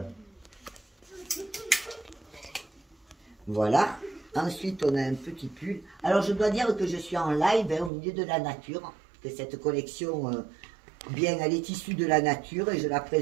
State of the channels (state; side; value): drops out; left; at 7.9 s